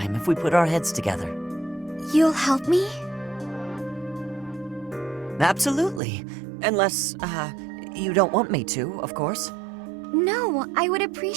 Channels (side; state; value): left; drops out; at 6.0 s